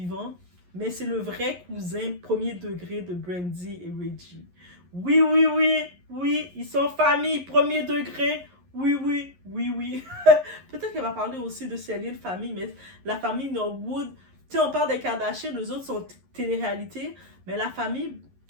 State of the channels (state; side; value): late; left; 11 ms